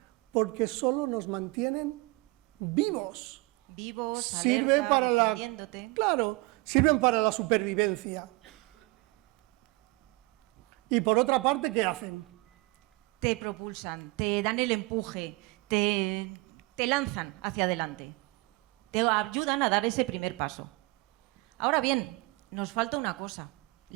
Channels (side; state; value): left; quieter; 23.6 dB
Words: porque solo nos mantienen vivos. Vivos, Sirve alerta, para la, defendiéndote. claro, sirven para la supervivencia. Y por otra parte, ¿qué hacen? Te propulsan, te dan el empuje, te lanzan hacia adelante. Te ayudan a dar ese primer paso. Ahora bien, nos falta una cosa.